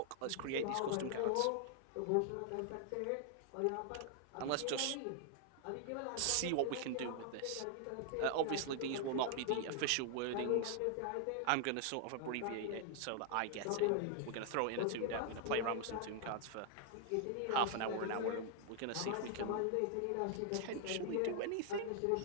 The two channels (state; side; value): different; both; correlation 0.00